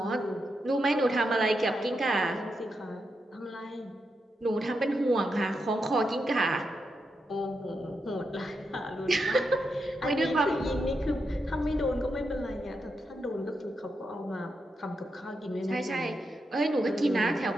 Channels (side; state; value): both; normal; correlation 0.85